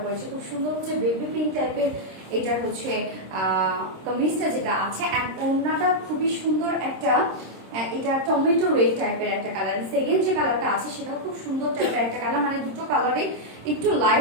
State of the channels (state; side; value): late; left; 26 ms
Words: পরেছি খুব সুন্দর হচ্ছে বেবি পিঙ্ক টাইপের। এটার হচ্ছে কমিজটা যেটা আছে অ্যান্ড ওড়নাটা খুবই সুন্দর একটা, এটা টমেটো রেড টাইপের একটা কালার। সেকেন্ড যে কালারটা আছে সেটাও খুব সুন্দর টাইপের একটা কালার, মানে দুটো কালারই একটু